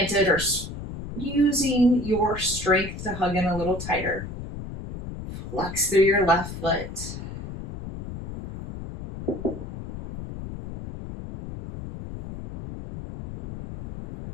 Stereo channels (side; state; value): left; noise; rumble, 9 dB below the sound